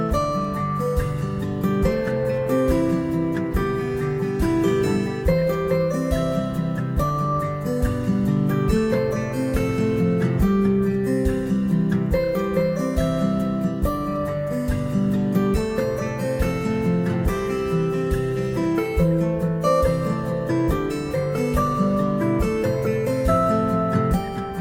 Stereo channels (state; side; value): identical; both; correlation 1.00